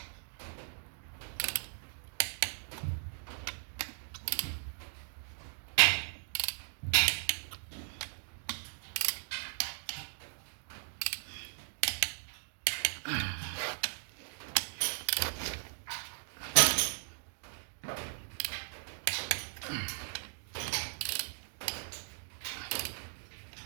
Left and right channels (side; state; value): left; silent; digital silence